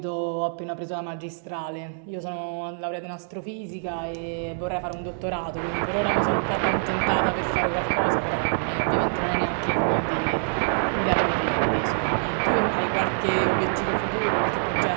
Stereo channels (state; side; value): silent; left; digital silence